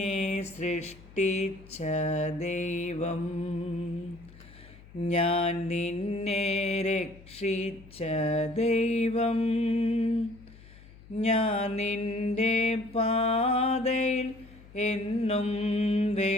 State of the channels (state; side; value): noise; left; hum, 21 dB below the sound